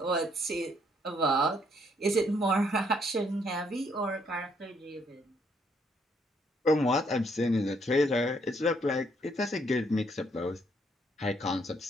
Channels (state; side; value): normal; both; correlation 0.70